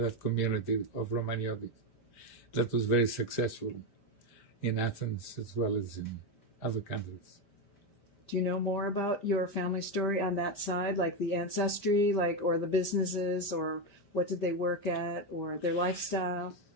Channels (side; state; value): right; late; 5.0 ms